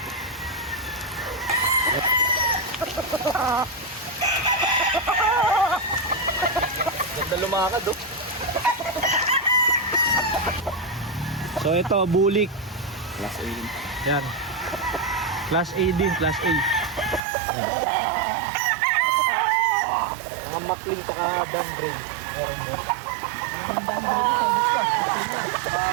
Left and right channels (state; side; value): drops out; left; at 17.2 s